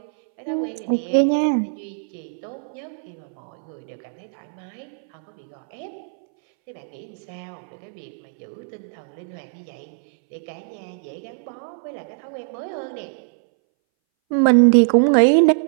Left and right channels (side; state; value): left; silent; 62 dB below the other